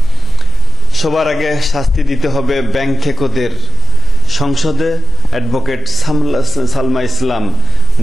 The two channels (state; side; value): normal; both; correlation 0.87